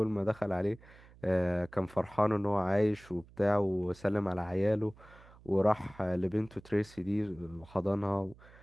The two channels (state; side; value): noise; right; hum, 23 dB below the sound